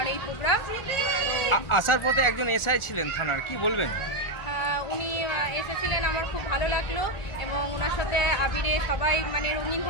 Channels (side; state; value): right; late; 1.4 ms